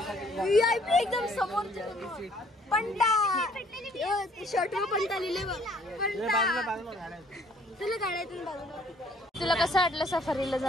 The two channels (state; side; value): normal; both; correlation 0.60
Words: VIP एकदम समोर पंटा शर्टवर पंटा लिहिले बघ. तुला काढायचं बाजूला. तुला कसं वाटलं सफारीला